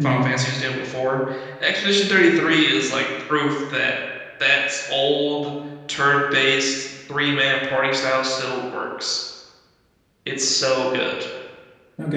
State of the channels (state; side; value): identical; both; correlation 1.00